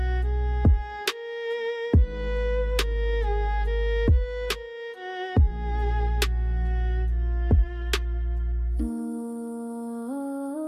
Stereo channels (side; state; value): both; identical; correlation 1.00